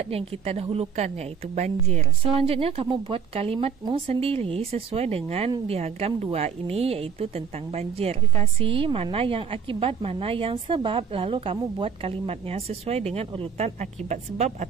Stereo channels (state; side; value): quieter; left; 7.1 dB